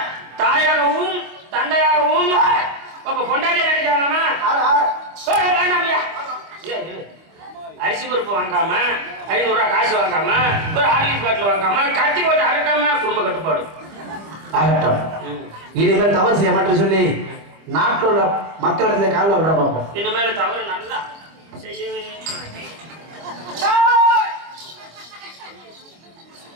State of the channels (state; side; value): late; left; 25 ms